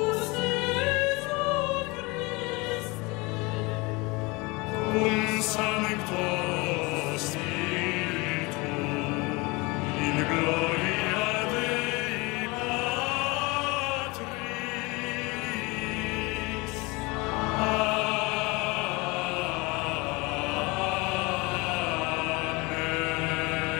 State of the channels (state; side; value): quieter; right; 25.4 dB